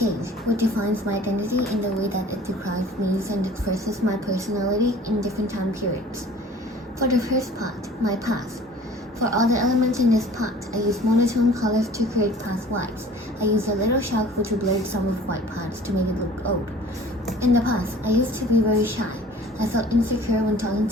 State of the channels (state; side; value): normal; both; correlation 0.47